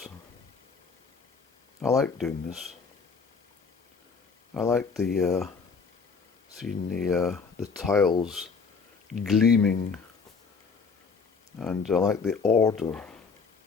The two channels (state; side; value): quieter; right; 5.1 dB